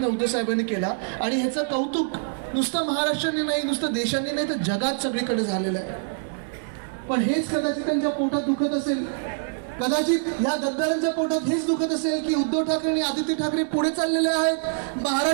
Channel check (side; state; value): left; silent; digital silence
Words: उद्धव साहेबांनी केला. आणि ह्याचं कौतुक नुसतं महाराष्ट्राने नाही, नुसतं देशांनी नाही, तर जगात सगळीकडे झालेलं आहे. पण हेच कदाचित त्यांच्या पोटात दुखत असेल, कदाचित या गद्दारांच्या पोटात हेच दुखत असेल की उद्धव ठाकरे आणि आदित्य ठाकरे पुढे चाललेले आहेत,